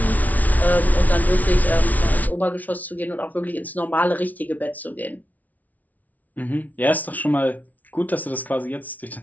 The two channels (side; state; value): right; late; 0.074 ms